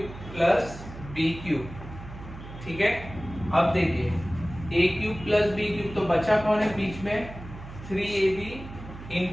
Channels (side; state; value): right; noise; hum, 13 dB below the sound